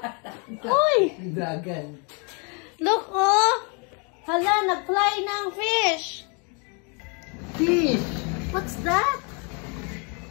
Uy! Dragon. Look, oh! Hala, nag-fly na ang fish. Fish. What's that?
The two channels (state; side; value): quieter; right; 35.0 dB